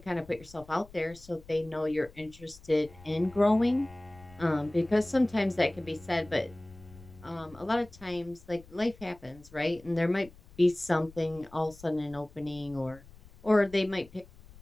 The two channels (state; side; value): noise; left; rumble, 22 dB below the sound